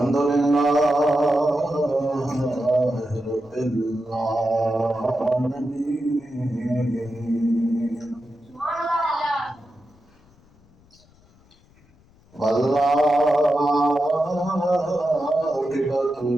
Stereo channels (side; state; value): left; noise; rumble, 30 dB below the sound